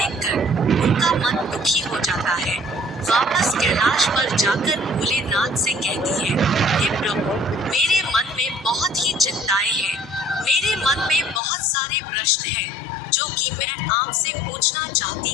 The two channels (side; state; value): right; drops out; at 11.4 s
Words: उनका मन दुखी हो जाता है। वापस कैलाश पर जाकर भोलेनाथ से कहती है, हे प्रभु, मेरे मन में बहुत ही चिंताएं हैं। मेरे मन में बहुत सारे प्रश्न हैं जो कि मैं आपसे पूछना चाहती